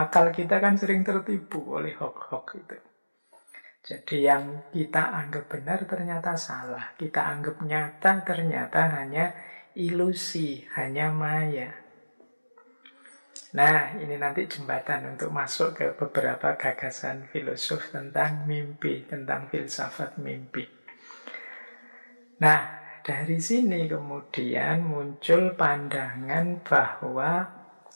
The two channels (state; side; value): inverted; both; correlation -1.00